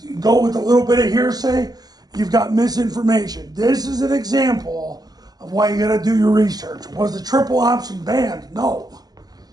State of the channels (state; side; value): late; left; 0.19 ms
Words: go with a little bit of hearsay. You've got misinformation. This is an example of why you got to do your research. Was the triple option banned? No.